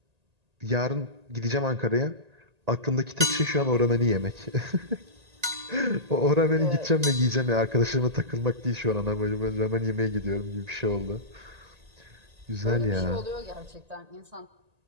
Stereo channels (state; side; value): late; left; 1.8 ms